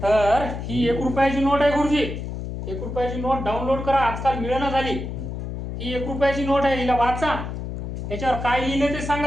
ही 1 रुपयाची नोट आहे गुरुजी. 1 रुपयाची नोट डाउनलोड करा, आजकाल मिळेना झाली. ही 1 रुपयाची नोट आहे, हिला वाचा. याच्यावर काय लिहिले ते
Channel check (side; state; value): left; noise; hum, 6 dB below the sound